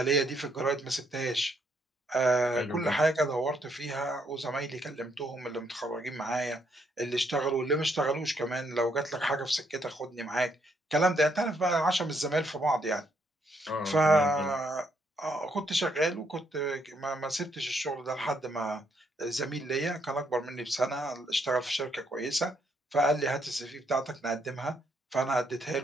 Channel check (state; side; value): normal; both; correlation 0.73